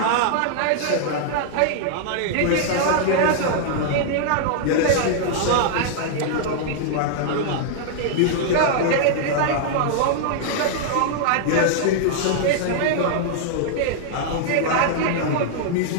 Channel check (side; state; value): both; different; correlation -0.01